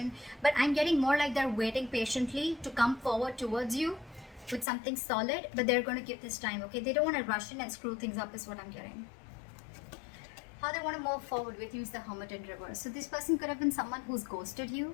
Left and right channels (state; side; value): drops out; right; at 4.7 s